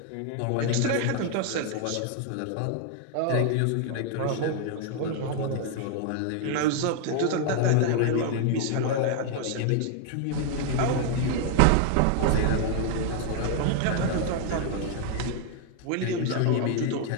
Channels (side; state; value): both; different; correlation 0.00